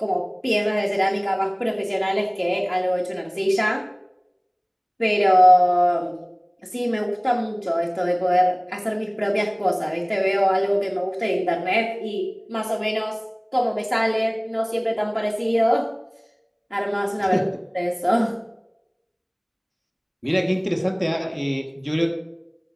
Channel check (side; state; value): both; identical; correlation 1.00